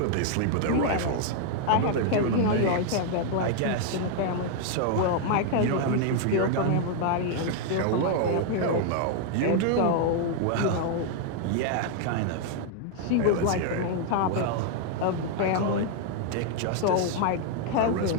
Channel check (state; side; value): different; both; correlation 0.00